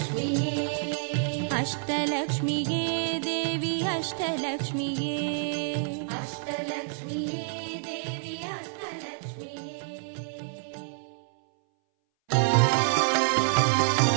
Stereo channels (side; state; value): left; silent; 59 dB below the other